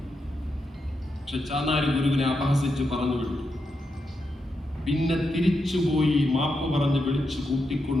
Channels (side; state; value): both; normal; correlation 0.85